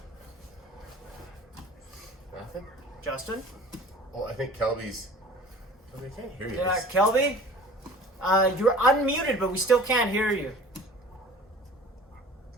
Nothing? Justin? Well, I think Kelby's. I can't hear you. Yeah, Kelby? You're unmuted, but we still can't hear you.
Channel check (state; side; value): normal; both; correlation 0.44